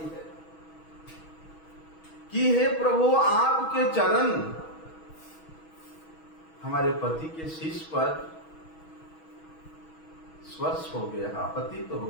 कि हे प्रभु, आपके चरण हमारे पति के शीश पर स्पर्श हो गया, पतित हो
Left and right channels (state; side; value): late; right; 6.2 ms